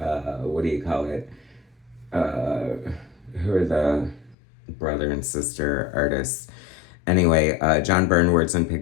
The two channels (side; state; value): right; drops out; at 4.4 s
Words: do you call it? Who are the brother and sister artists? Anyway, John Byrne words and